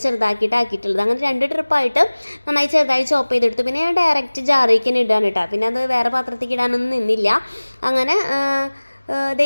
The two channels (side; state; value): both; inverted; correlation -1.00